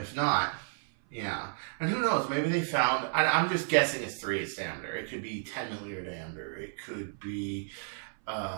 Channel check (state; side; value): silent; left; 56 dB below the other